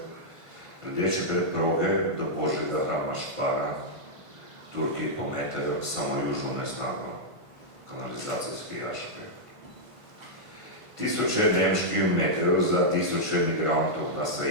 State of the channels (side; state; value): left; late; 1.5 ms